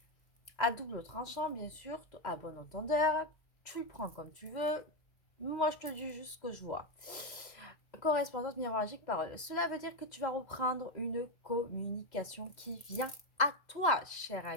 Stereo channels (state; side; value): late; right; 2.0 ms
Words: à double tranchant, bien sûr, à bon entendeur. Tu le prends comme tu veux. Moi, je te dis juste ce que je vois. Correspondance, miroir magique, parole. Cela veut dire que tu vas reprendre une communication qui vient à toi, cher